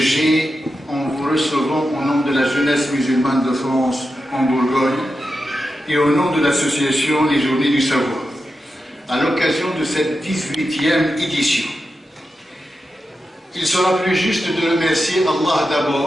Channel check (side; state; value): both; normal; correlation 0.90